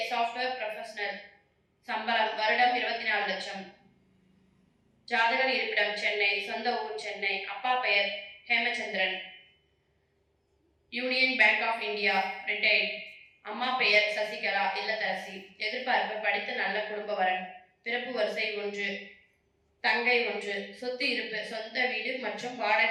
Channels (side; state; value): both; identical; correlation 1.00